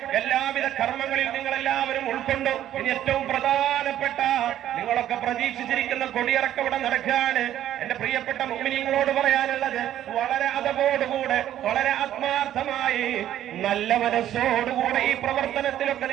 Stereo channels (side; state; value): left; quieter; 11.8 dB